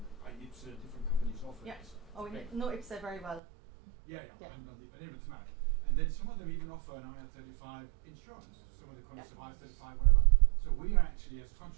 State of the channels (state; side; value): drops out; left; at 3.4 s